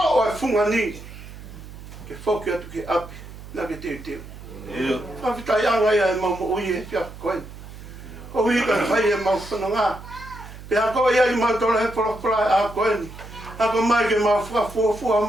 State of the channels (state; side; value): noise; right; hum, 15 dB below the sound